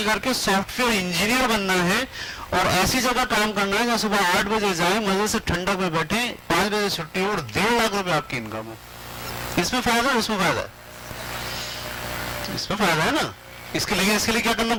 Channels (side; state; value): both; identical; correlation 1.00